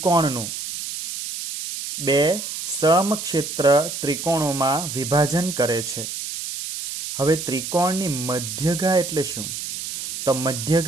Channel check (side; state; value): right; noise; hiss, 6 dB below the sound